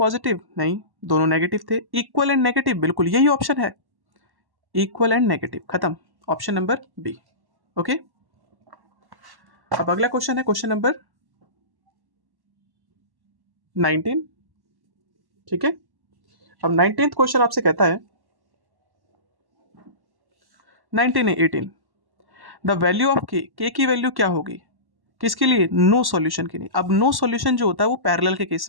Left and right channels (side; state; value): left; late; 1.1 ms